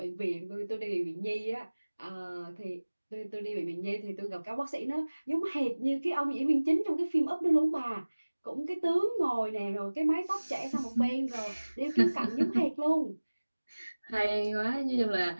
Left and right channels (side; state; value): both; inverted; correlation -1.00